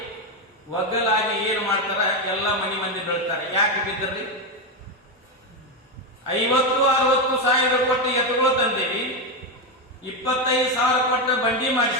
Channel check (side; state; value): both; normal; correlation 0.09